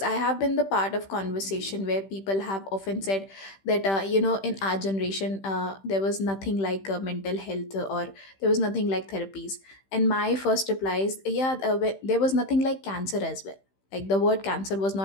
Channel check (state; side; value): late; right; 15 ms